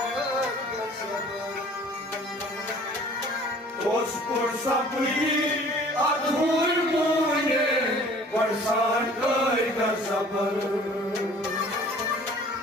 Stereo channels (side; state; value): both; normal; correlation 0.50